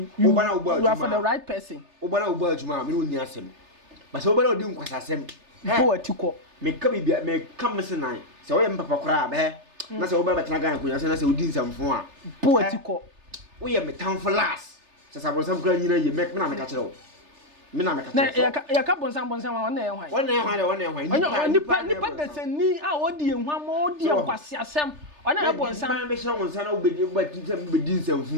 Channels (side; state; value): left; late; 3.3 ms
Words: you are for the right person obana obo adwuma me woni asem ba se obana odi nkwasasem bo atiko me ka bibia me kam se nan se wo ye mpapa kora ba na se obana betena Ghana kunya se na se odi nsamfo a bo atiko wo ye me town for last se sabrosam kura nyina ye me na me ka kire wo me na me ka kire na ya ka bonsam wa na ye hwan nipa de se ni a odi ehwa ma odi nkwasiasem ona bonsam me hye wonsa na obedi nsamfo